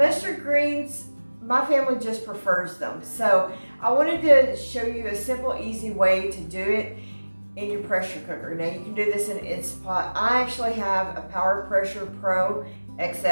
greens, my family just prefers them. So I wanted to show you a simple, easy way to do it in your pressure cooker. Now you can do this in an Instapot. I actually have a Power Pressure Pro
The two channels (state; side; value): inverted; both; correlation -1.00